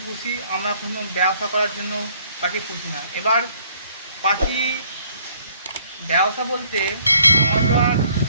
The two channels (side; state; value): both; inverted; correlation -0.62